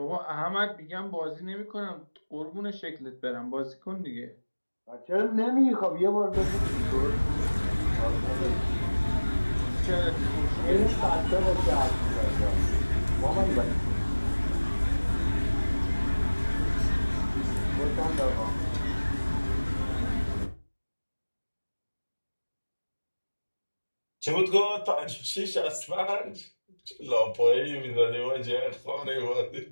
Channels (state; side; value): inverted; both; correlation -1.00